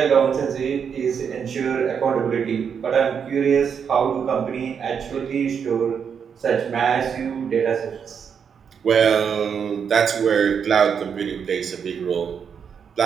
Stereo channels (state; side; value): quieter; left; 7.0 dB